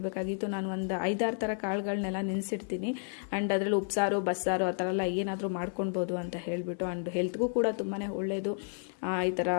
ನಾನು ಒಂದು 5-6 ಥರ ಕಾಳುಗಳನ್ನೆಲ್ಲ ನೆನೆಸಿಡ್ತೀನಿ. ಆ್ಯಂಡ್ ಅದರಲ್ಲಿ ಉಪ್ಸಾರು ಬಸ್ಸಾರು ಆ ಥರ ಎಲ್ಲ ಏನಾದರೂ ಮಾಡ್ಕೊಳ್ಬೋದು ಅಂತ ಹೇಳಿಬಿಟ್ಟು. ಆ್ಯಂಡ್ ಹೆಲ್ತ್ಗೂ ಕೂಡ ತುಂಬಾ ಒಳ್ಳೆಯದು ಈ ಥರ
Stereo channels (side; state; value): right; silent; 57 dB below the other